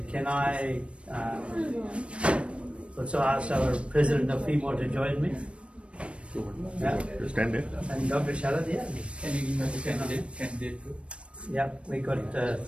can I also ask our President of FEMO to join me? Yeah. Stand there. And Dr. Sharad, yeah. Can you give us a candidate? Yeah, we got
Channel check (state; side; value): late; left; 0.060 ms